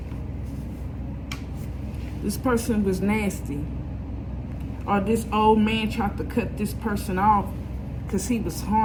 This person was nasty. Or this old man tried to cut this person off because he was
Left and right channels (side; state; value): both; identical; correlation 1.00